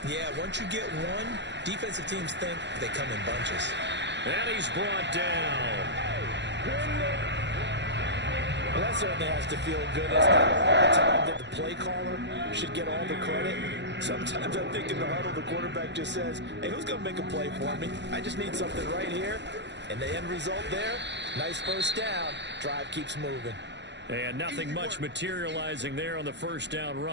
Yeah, once you get one, defensive teams think they come in bunches. And he's brought down. Well, that certainly has to feel good. It's not all the time that the play caller should get all the credit. Sometimes I think in the huddle, the quarterback just says, hey, who's going to make a play for me? I just need something right here. And the end result there, nice first down. Drive keeps moving. And nothing much materializing there on the first down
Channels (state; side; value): late; left; 0.51 ms